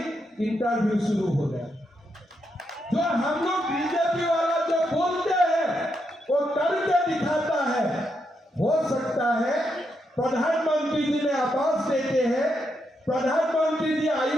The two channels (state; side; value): normal; both; correlation 0.81